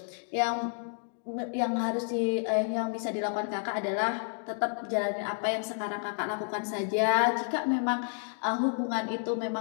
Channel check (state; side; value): silent; right; digital silence